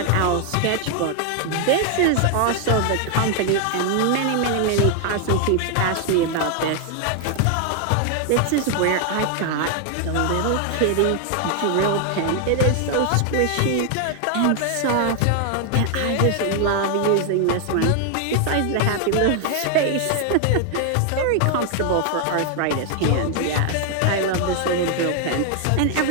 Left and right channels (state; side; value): different; both; correlation 0.00